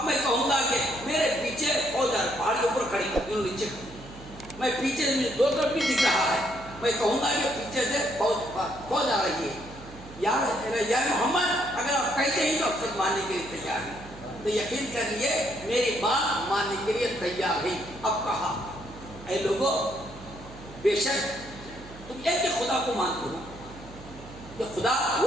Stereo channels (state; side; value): noise; right; hum, 17 dB below the sound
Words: میں کہوں گا کہ میرے پیچھے فوج ہے, پہاڑ کے اوپر کھڑی کر نیچے, میں پیچھے دو طرف بھی دکھ رہا ہے. میں کہوں گا کہ پیچھے سے فوج آ رہی ہے. یا محمد اگر آپ کہتے ہیں تو اب تک ماننے کے لیے تیار ہیں, تو یقین کر لیے میری بات ماننے کے لیے تیار ہے. اب کہا اے لوگوں بے شک تم ایک کہ خدا کو مانتے ہو, کہ خدا